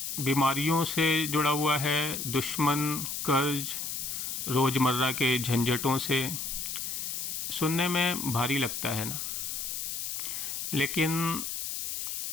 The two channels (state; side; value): noise; left; hiss, 4 dB below the sound